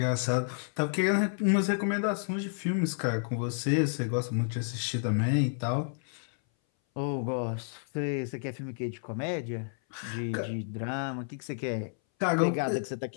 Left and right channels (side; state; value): right; silent; 57 dB below the other